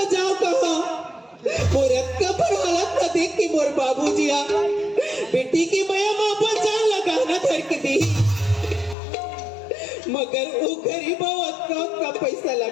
जाओ कहाँ मोर का पर हालत का देख के मोर बाबूजी आ बेटी की माया माँ पर जान लगाना धर के दी मगर वो गरीब औरत का पैसा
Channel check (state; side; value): drops out; right; at 9.0 s